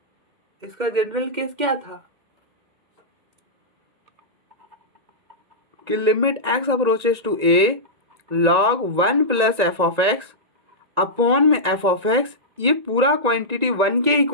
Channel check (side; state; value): left; late; 1.9 ms